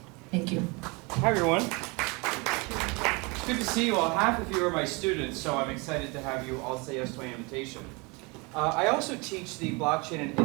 Thank you. Hi everyone. It's good to see you all. Half of you are my students, so I'm excited to have you all say yes to my invitation. I also teach the Blockchain and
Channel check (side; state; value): left; quieter; 28.3 dB